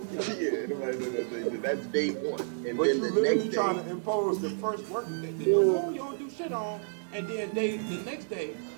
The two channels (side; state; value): left; silent; 58 dB below the other